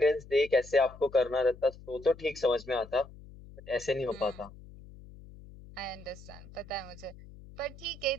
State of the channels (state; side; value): noise; left; hum, 18 dB below the sound